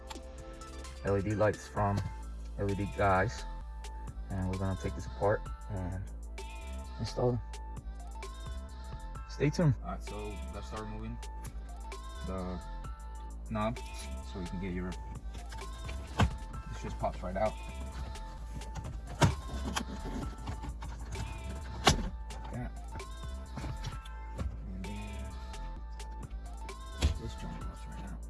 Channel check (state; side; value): identical; both; correlation 1.00